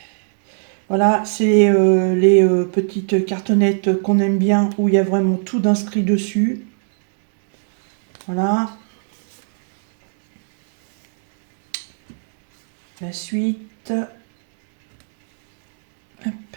Voilà, c'est les petites cartonnettes qu'on aime bien, où il y a vraiment tout d'inscrit dessus. Voilà. La suite. Hop.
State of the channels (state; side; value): silent; left; digital silence